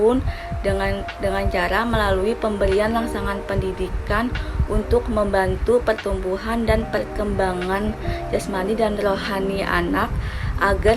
dengan cara melalui pemberian rangsangan pendidikan untuk membantu pertumbuhan dan perkembangan jasmani dan rohani anak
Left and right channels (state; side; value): identical; both; correlation 1.00